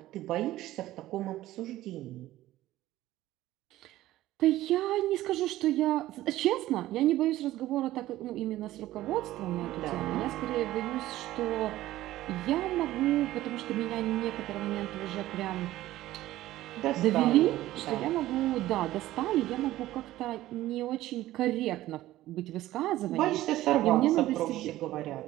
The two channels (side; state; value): left; quieter; 15.4 dB